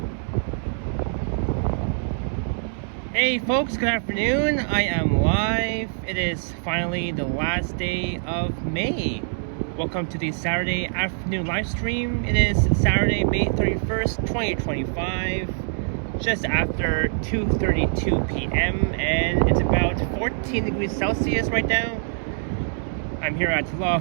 folks, good afternoon. I am live. It is finally the last day of May. Welcome to the Saturday afternoon live stream. It is Saturday, May 31st, 2025, just after 2:32 p.m. and it's about 14 degrees Celsius right now. I'm here at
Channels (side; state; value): left; silent; 62 dB below the other